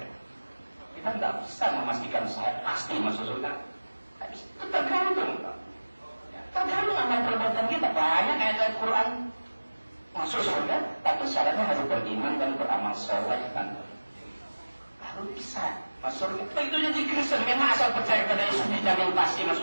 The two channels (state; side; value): inverted; both; correlation -1.00